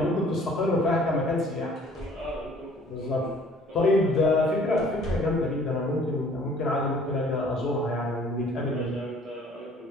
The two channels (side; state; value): both; normal; correlation 0.54